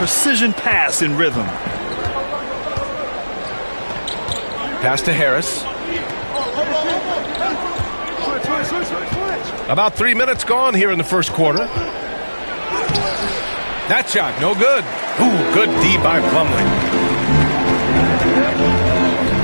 pass in rhythm. Pass to Harris. About 3 minutes gone here in the first quarter. That shot, no good. Ooh, good D by Plumlee.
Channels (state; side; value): inverted; both; correlation -1.00